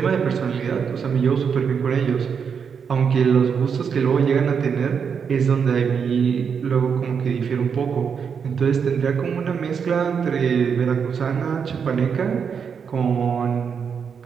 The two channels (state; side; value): quieter; left; 6.6 dB